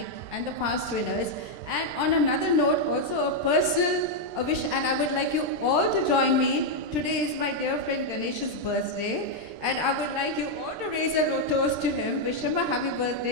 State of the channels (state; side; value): late; left; 13 ms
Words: and the past winners. And on another note, also a personal wish, and I would like you all to join me. Today is my dear friend Ganesh's birthday. And I would like you all to raise a toast to him, wish him a happy